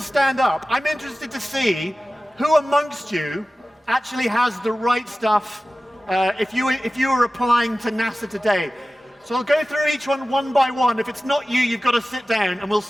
up, I'm interested to see who amongst you actually has the right stuff if you were applying to NASA today. So I'll go through each one by one. If it's not you, you've got to sit down, and we'll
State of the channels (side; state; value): both; normal; correlation 0.96